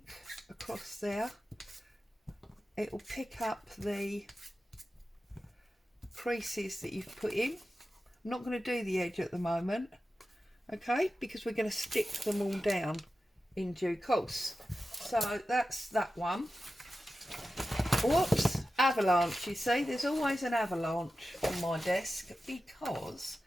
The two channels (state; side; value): normal; both; correlation 0.93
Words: across there. It will pick up the creases that you've put in. I'm not going to do the edge at the moment, okay, because we're going to stick them all down in due course. So that's that one. Whoops, avalanche. You see, there's always an avalanche on my desk because